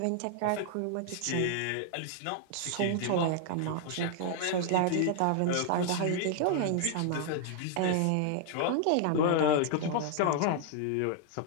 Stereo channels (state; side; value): different; both; correlation 0.00